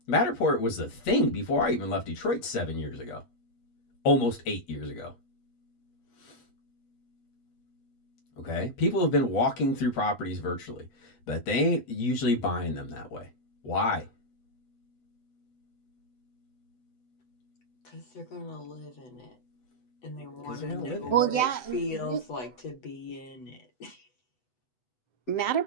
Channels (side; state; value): right; late; 8.4 ms